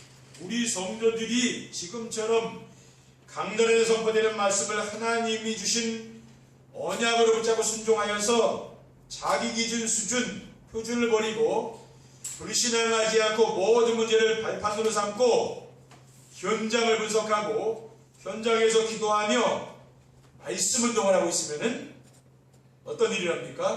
우리 성도들이 지금처럼 강단에서 선포되는 말씀을 하나님이 주신 언약으로 붙잡고 순종하여서 자기 기준 수준 표준을 버리고 불신앙하지 않고 모든 문제를 발판으로 삼고 현장을 분석하고 현장에서 기도하며 말씀 운동을 하고 있으면은 어떤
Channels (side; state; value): both; identical; correlation 1.00